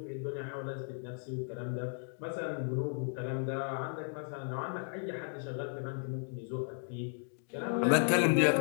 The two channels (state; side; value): silent; right; 54 dB below the other